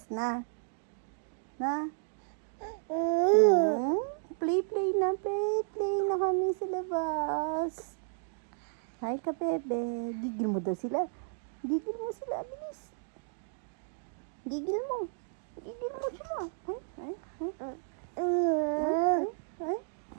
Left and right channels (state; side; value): silent; left; digital silence